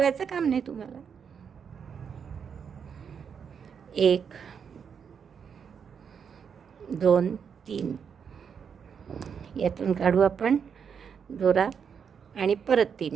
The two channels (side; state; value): left; quieter; 6.9 dB